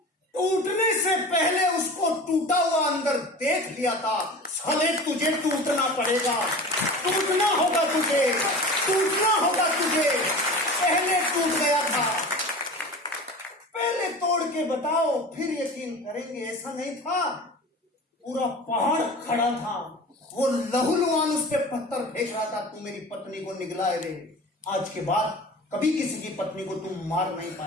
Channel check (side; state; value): both; normal; correlation 0.36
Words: टूटने से पहले उसको टूटा हुआ अंदर देख लिया था। साले तुझे टूटना पड़ेगा, टूटना होगा तुझे। टूटना होगा तुझे, पहले टूट गया था। पहले तोड़ के बताओ फिर यकीन करेंगे। ऐसा नहीं था, पूरा पहाड़ खड़ा था, वो लहूलुहान उस पे पत्थर फेंक रहा था, तू मेरी पत्नी को निगला रे। आज के बाद कभी किसी की पत्नी को तुम मार नहीं